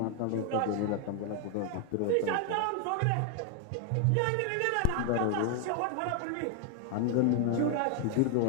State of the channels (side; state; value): both; different; correlation 0.00